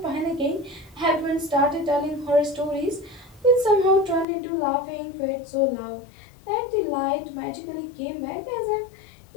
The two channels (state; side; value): drops out; right; at 4.2 s